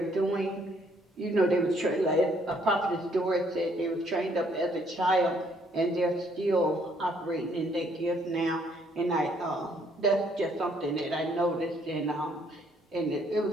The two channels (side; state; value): both; normal; correlation 0.66